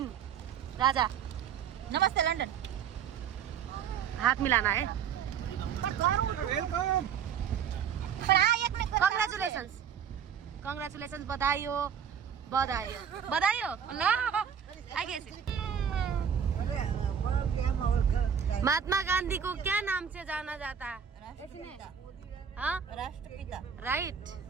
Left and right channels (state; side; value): quieter; left; 7.9 dB